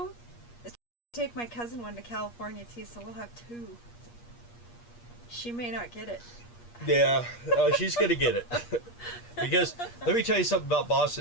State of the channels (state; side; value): late; right; 8.4 ms